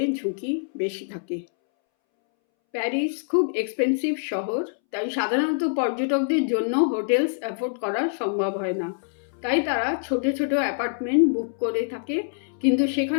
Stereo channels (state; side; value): silent; right; 62 dB below the other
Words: ঝুঁকি বেশি থাকে। প্যারিস খুব এক্সপেন্সিভ শহর, তাই সাধারণত পর্যটকদের জন্য হোটেলস অ্যাফোর্ড করা সম্ভব হয় না। তাই তারা ছোট ছোট অ্যাপার্টমেন্ট বুক করে থাকে, কিন্তু